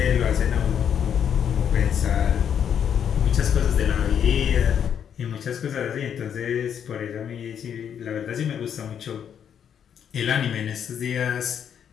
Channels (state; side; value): quieter; right; 8.5 dB